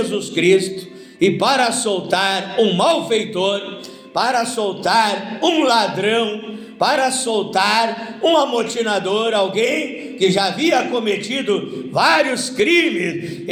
Cristo e para soltar um malfeitor, para soltar um ladrão, para soltar um amotinador, alguém que já havia cometido vários crimes,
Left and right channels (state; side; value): identical; both; correlation 1.00